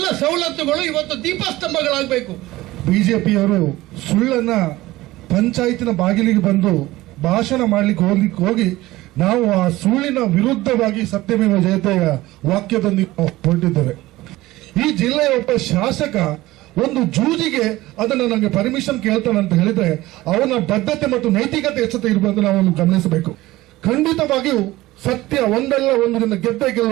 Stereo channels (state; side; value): quieter; left; 17.9 dB